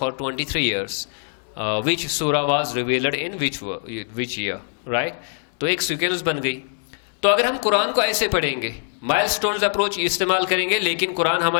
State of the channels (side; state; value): right; silent; 64 dB below the other